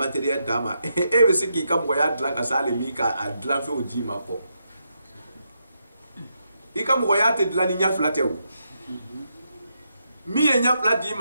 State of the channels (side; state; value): both; inverted; correlation -0.82